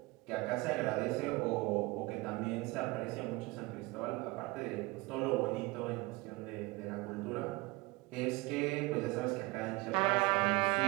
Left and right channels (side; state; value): left; quieter; 22.5 dB